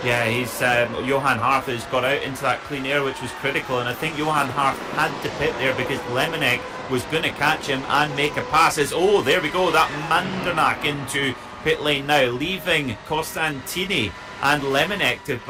Yeah, he's Johan Harth has got out into that clean air, which was critical, and I think Johan Harth had to pit there because Lemonek was going to catch him and make a pass. Oh, there we go, that Mandenack into pit lane now, leaving Costantini and Lemonek to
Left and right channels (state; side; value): identical; both; correlation 1.00